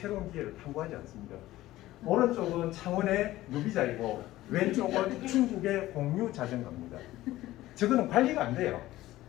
기회를 탐구하지 않습니다. 오른쪽은 창원의 누비자이고 왼쪽은 중국의 공유 자전거입니다. 저거는 관리가 안 돼요.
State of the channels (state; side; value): quieter; right; 16.0 dB